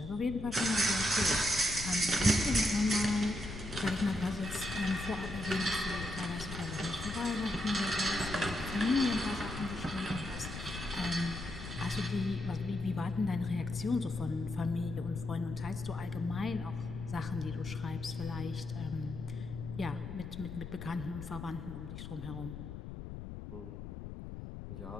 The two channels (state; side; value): noise; left; rumble, 9 dB below the sound